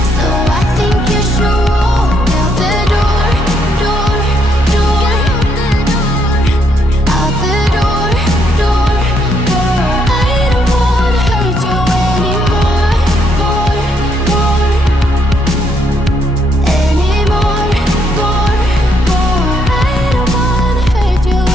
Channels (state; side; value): normal; both; correlation 0.73